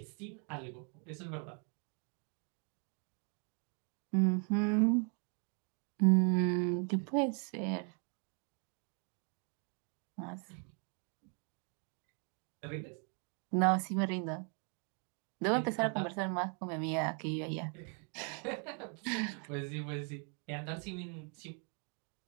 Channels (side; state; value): left; quieter; 39.7 dB